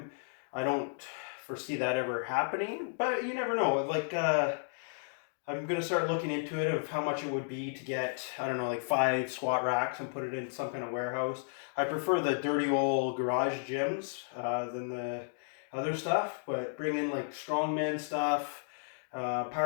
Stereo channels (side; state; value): right; silent; digital silence